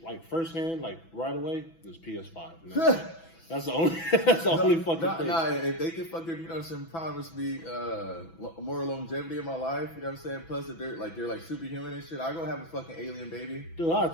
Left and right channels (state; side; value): late; right; 6.0 ms